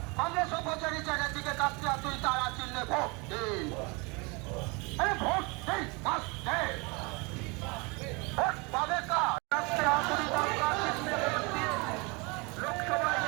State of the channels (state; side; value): quieter; left; 28.5 dB